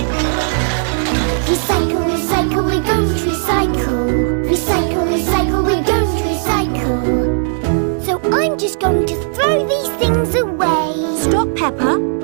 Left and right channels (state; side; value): silent; left; 64 dB below the other